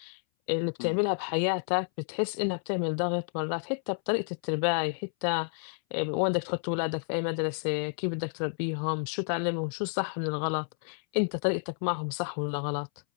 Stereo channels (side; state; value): right; silent; 58 dB below the other